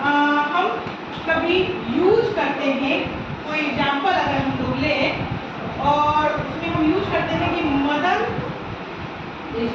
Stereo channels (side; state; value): both; identical; correlation 1.00